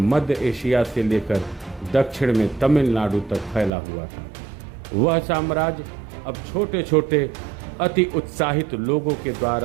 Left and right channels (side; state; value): left; drops out; at 3.7 s